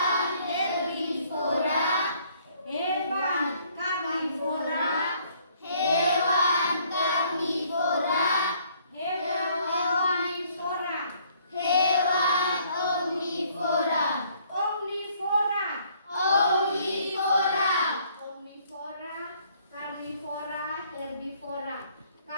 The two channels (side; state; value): both; inverted; correlation -0.63